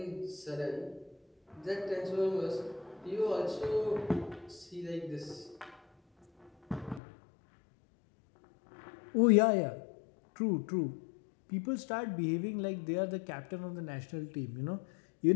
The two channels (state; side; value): drops out; right; at 7.0 s